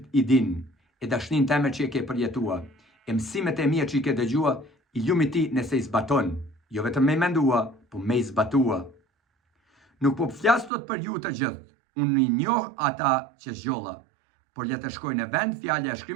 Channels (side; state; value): left; drops out; at 10.7 s